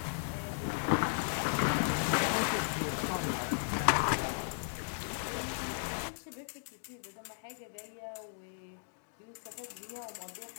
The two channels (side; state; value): right; silent; digital silence